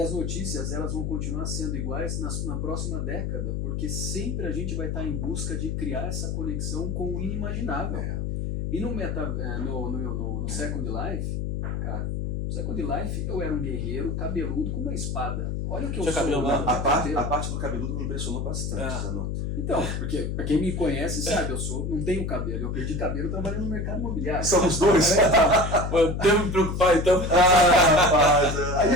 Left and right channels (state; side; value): noise; left; hum, 2 dB below the sound